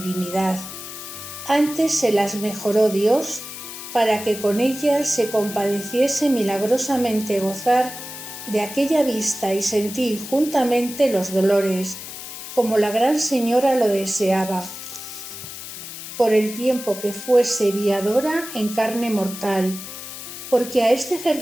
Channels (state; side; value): noise; left; hiss, 11 dB below the sound